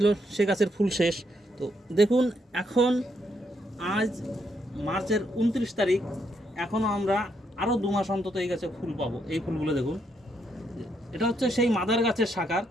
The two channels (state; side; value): normal; both; correlation 0.76